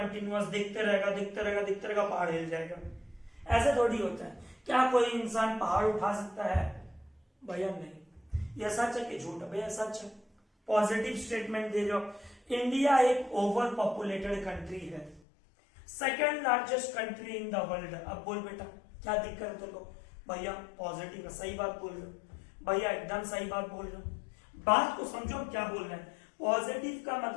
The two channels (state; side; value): drops out; right; at 15.2 s